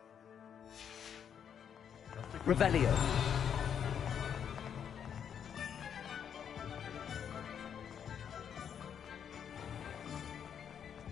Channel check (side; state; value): right; quieter; 8.2 dB